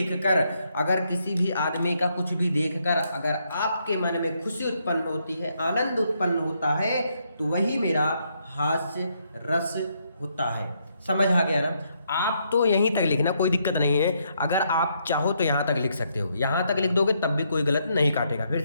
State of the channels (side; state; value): both; inverted; correlation -0.75